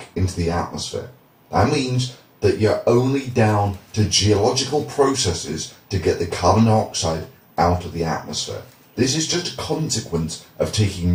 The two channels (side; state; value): both; identical; correlation 1.00